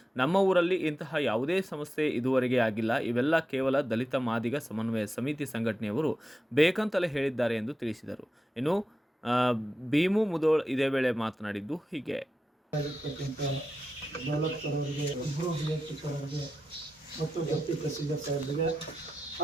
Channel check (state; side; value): normal; both; correlation 0.90